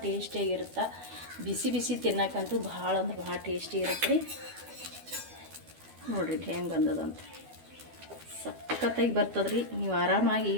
ಟೇಸ್ಟಿಯಾಗಿರುತ್ತೆ. ಬಿಸಿ ತಿನ್ನಕ್ಕಂತೂ ಭಾಳ ಅಂದ್ರೆ ಭಾಳ ಟೇಸ್ಟಿ ಇರುತ್ತೆ ರೀ ನೋಡ್ರಿ. ಹೆಂಗೆ ಬಂದದಂತ ಸಖತ್ತಾಗಿ ಬರ್ತದ್ರಿ. ನೀವು ಆರಾಮಾಗಿ ಈ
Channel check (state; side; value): late; left; 12 ms